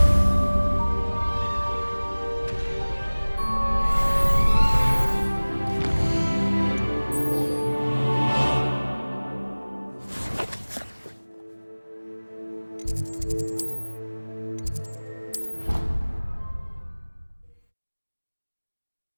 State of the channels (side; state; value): both; inverted; correlation -1.00